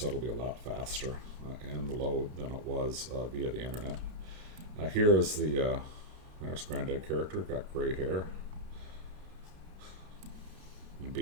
it'll be a lot faster in the load than it was via the internet. Here is there's Granddad character, got gray hair and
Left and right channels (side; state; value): left; late; 31 ms